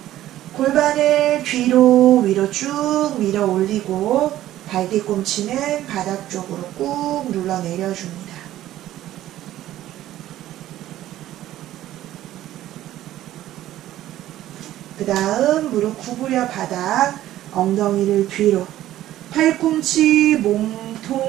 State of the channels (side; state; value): left; quieter; 13.7 dB